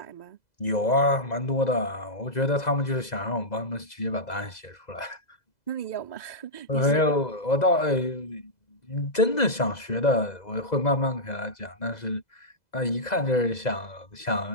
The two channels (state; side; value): late; right; 2.0 ms